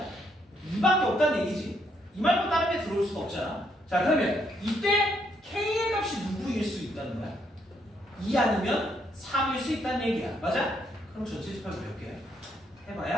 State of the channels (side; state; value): both; normal; correlation 0.73